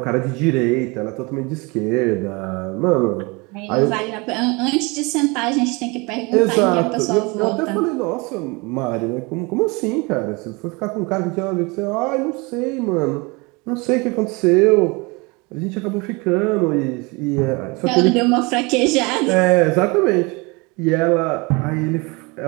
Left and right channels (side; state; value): left; quieter; 27.1 dB